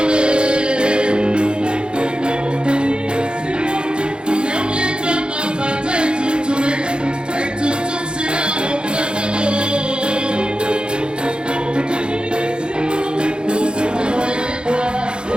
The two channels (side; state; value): left; late; 0.051 ms